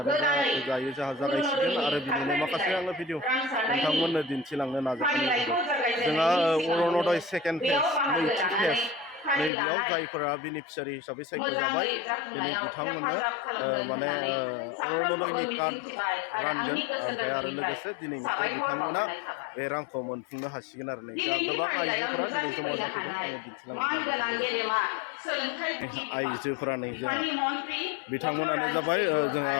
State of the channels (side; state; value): right; drops out; at 9.5 s